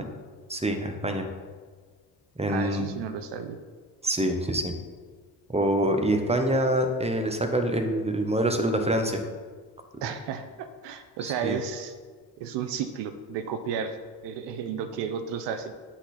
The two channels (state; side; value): normal; both; correlation 0.37